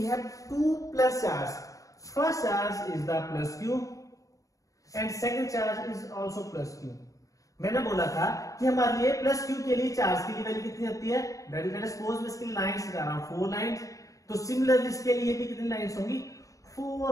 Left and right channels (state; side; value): late; right; 0.16 ms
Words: have 2 plus charge. First charge is the plus q and second charge is also plus q. मैंने बोला था कि हमारे लिए प्लस q के लिए charge की value कितनी होती है, let us suppose मैं इसकी लाइंस लगा रहा हूं 4 लाइंस, तो सिमिलरली इसके लिए भी कितनी लाइंस होंगी,